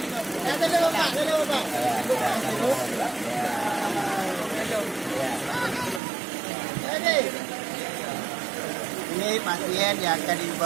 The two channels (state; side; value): drops out; left; at 6.0 s